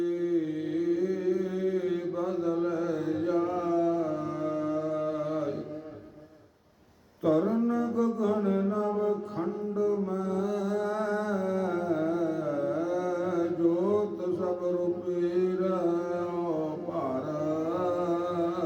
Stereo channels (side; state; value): both; identical; correlation 1.00